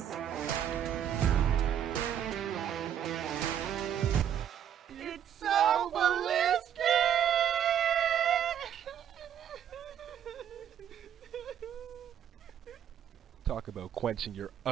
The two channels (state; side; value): quieter; left; 9.5 dB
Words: It's so ballistic! Talk about quenching your